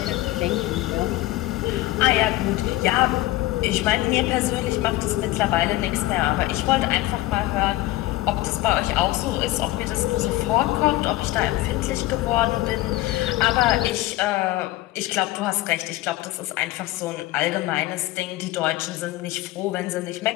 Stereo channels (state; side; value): quieter; right; 17.5 dB